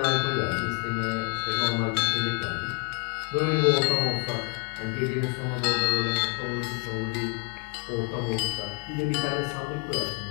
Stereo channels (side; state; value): right; quieter; 38.8 dB